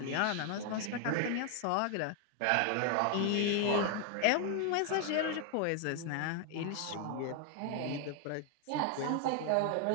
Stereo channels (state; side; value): different; both; correlation 0.01